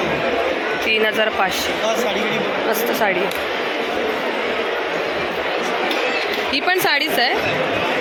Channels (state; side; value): identical; both; correlation 1.00